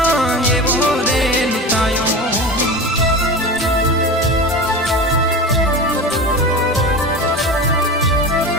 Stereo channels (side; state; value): both; normal; correlation 0.28